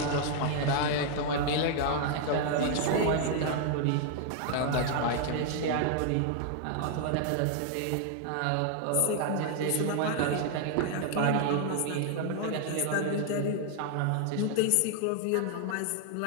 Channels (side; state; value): both; different; correlation 0.00